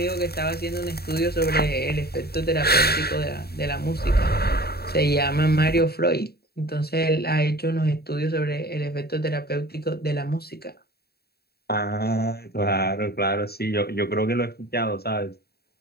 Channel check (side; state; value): right; late; 0.46 ms